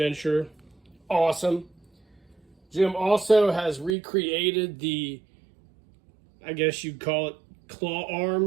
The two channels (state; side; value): drops out; left; at 4.0 s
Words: Awesome. Jim also has recreated the, I guess you'd call it, claw